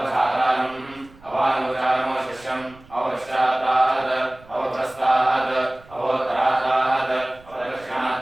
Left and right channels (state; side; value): noise; right; rumble, 24 dB below the sound